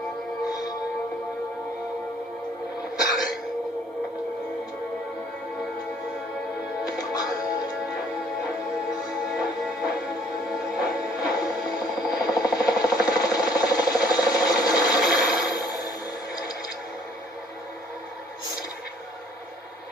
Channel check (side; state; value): both; normal; correlation 0.59